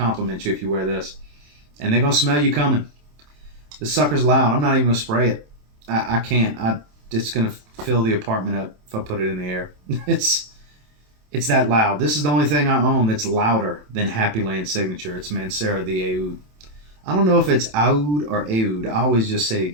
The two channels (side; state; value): left; late; 27 ms